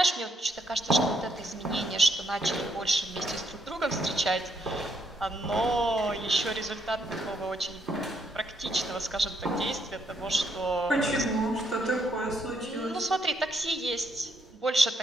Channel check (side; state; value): both; normal; correlation 0.74